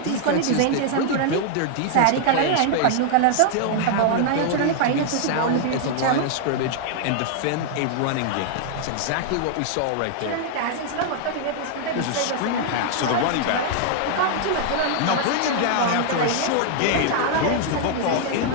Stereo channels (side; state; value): both; different; correlation 0.00